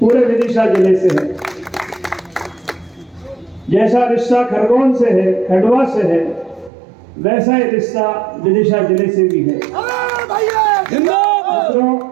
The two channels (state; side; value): drops out; left; at 6.7 s